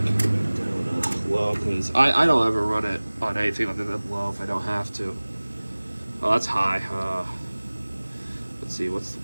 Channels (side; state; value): both; inverted; correlation -1.00